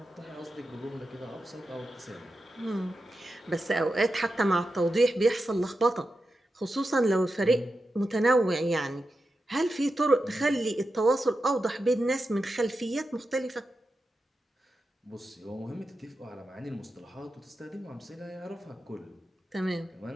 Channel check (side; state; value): both; normal; correlation 0.90